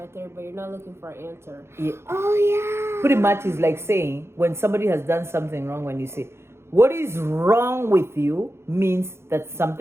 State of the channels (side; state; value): left; late; 0.12 ms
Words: out there, but you're not looking for an answer. Yeah. Oh yeah. Pretty much is like saying when somebody has done something wrong, when you say, what is wrong with you, means that